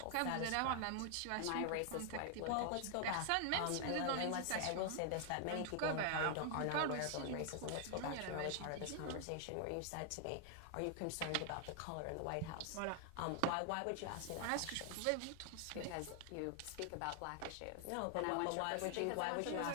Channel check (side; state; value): both; different; correlation 0.00